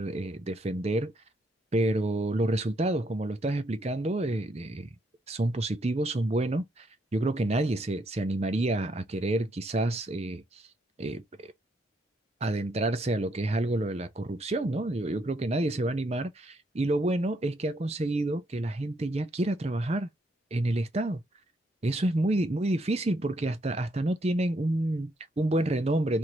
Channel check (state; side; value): normal; both; correlation 0.74